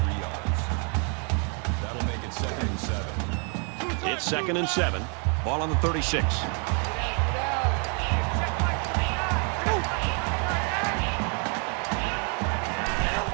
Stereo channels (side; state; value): left; quieter; 38.4 dB